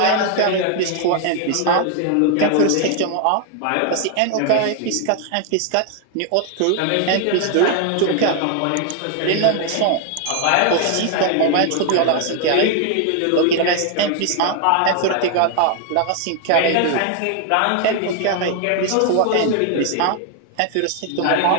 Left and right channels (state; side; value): different; both; correlation 0.00